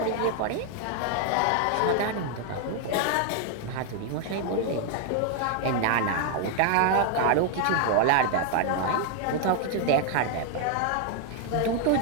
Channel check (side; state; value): both; different; correlation 0.00